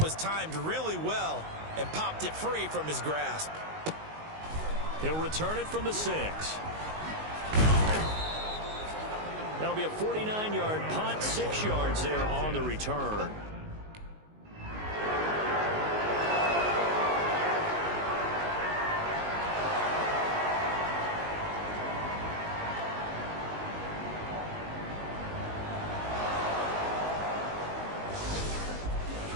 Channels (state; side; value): late; left; 19 ms